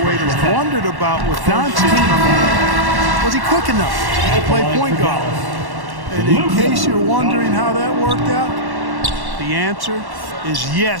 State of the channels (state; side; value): late; left; 1.1 ms